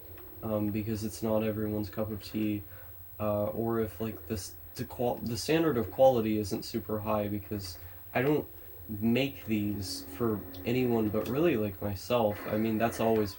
because it's not everyone's cup of tea, or if like the standard of quality isn't super high, because I don't make these for anyone but really like myself. I mean, that's always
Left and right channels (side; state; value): both; identical; correlation 1.00